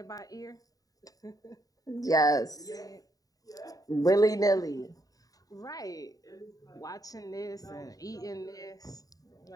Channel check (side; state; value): right; late; 0.18 ms